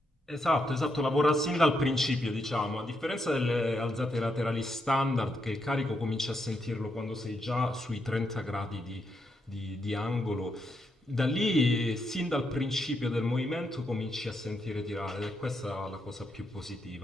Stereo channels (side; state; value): both; normal; correlation 0.80